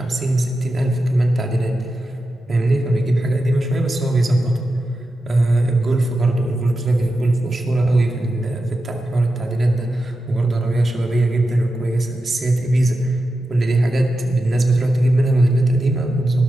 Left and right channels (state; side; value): normal; both; correlation 0.90